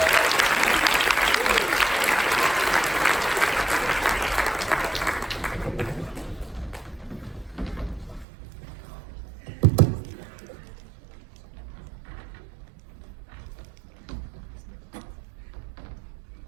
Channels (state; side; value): drops out; left; at 8.2 s